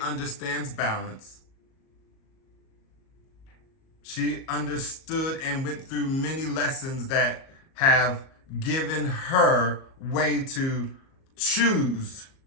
balance. She understood and went through many lessons that have given her way to choose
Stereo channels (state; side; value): late; right; 37 ms